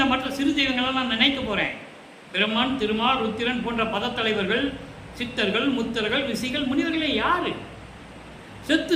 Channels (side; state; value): both; identical; correlation 1.00